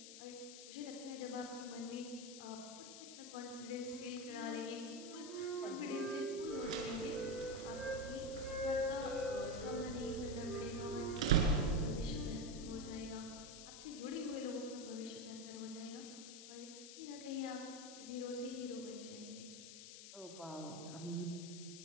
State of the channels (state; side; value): noise; left; hiss, 11 dB below the sound